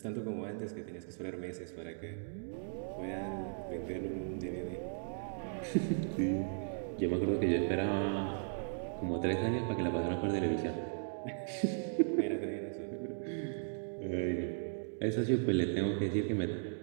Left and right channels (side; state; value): left; silent; digital silence